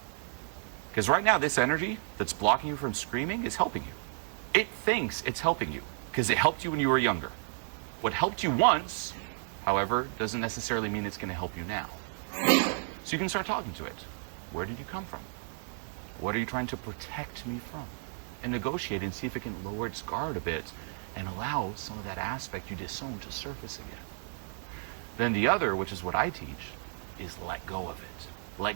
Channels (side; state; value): left; silent; 56 dB below the other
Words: Because right now, this energy that's blocking you from screaming is helping you. It thinks it's helping you because it helped you when you were younger. What helped you once, however, doesn't necessarily mean it's going to help you now. So you can start talking to it. Where did you come from? What are you trying to protect me from? And negotiate and see if it can lower its guard a bit and allow some of that aspect you disowned to surface again. Then the other, which is what I teach, is let go of it. Let